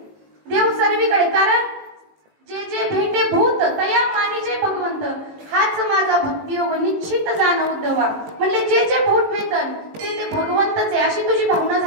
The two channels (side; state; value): left; late; 19 ms